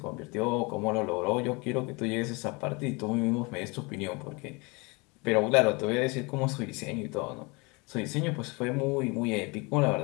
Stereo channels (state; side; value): quieter; right; 27.9 dB